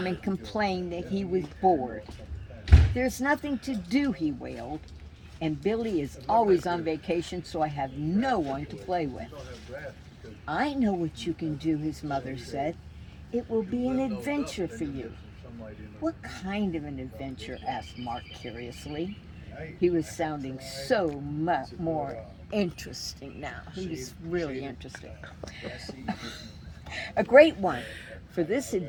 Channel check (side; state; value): both; identical; correlation 1.00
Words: and complained that he was bored. "There's nothing to do," he wailed, "and Billy is always on vacation, so I have no one to play with." "I know what you can do," his mother said. "It will be an adventure for you." "What kind of an adventure?" asked Mark curiously. He was sounding so much more interesting now. He was really interesting. "A great one. For this